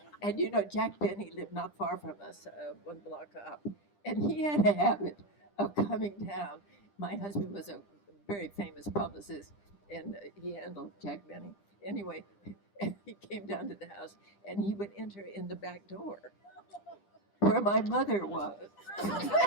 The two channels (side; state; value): right; late; 10 ms